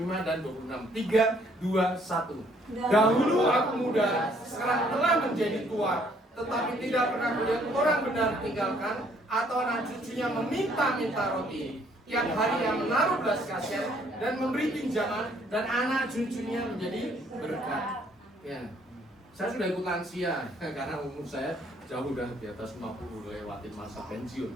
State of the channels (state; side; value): normal; both; correlation 0.64